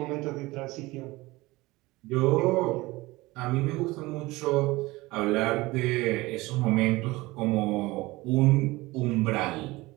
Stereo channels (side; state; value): left; quieter; 20.7 dB